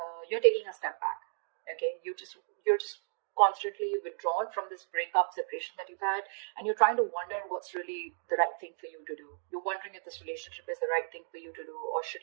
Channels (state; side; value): silent; left; digital silence